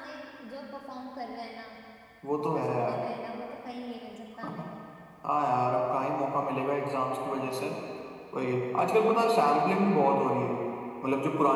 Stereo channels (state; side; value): identical; both; correlation 1.00